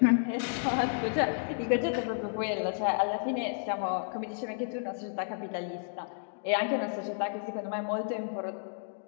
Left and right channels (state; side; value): silent; right; digital silence